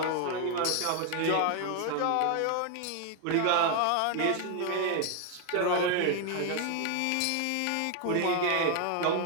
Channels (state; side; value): different; both; correlation 0.00